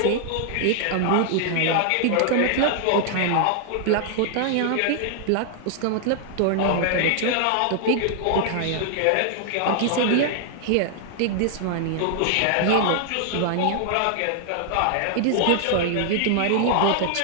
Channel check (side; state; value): both; different; correlation 0.00